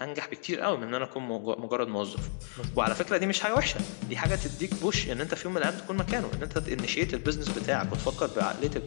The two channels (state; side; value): silent; right; digital silence